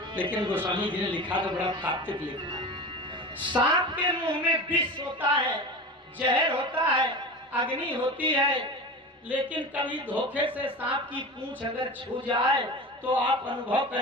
लेकिन गोस्वामी जी ने लिखा तो बड़ा तात्विक लिखा। सांप के मुंह में विष होता है, जहर होता है, अग्नि होती है, लेकिन कभी धोखे से सांप की पूंछ अगर छू जाए तो आप अनुभव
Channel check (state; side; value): normal; both; correlation 0.30